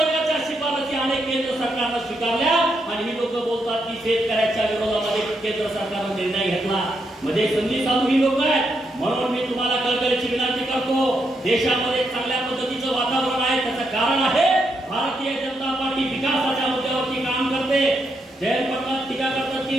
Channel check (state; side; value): normal; both; correlation 0.80